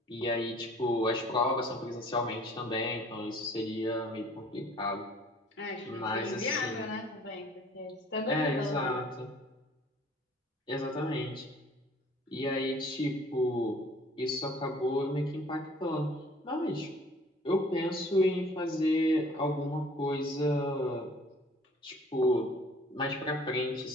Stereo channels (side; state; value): both; normal; correlation 0.53